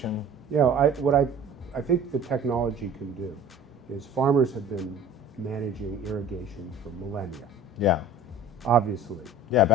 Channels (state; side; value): normal; both; correlation 0.44